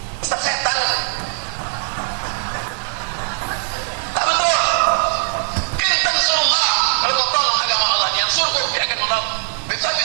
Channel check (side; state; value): left; silent; 59 dB below the other